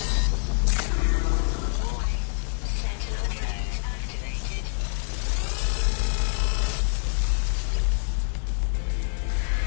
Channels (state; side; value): silent; right; digital silence